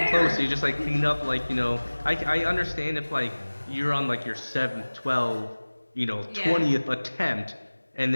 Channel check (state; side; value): inverted; both; correlation -1.00